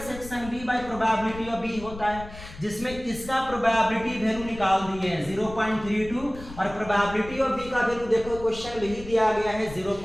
B by probability of B होता है, जिसमें इसका प्रोबेबिलिटी वैल्यू निकाल दिए हैं 0.32 और प्रोबेबिलिटी ऑफ बी का वैल्यू देखो क्वेश्चन में ही दिया गया है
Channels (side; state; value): left; noise; rumble, 14 dB below the sound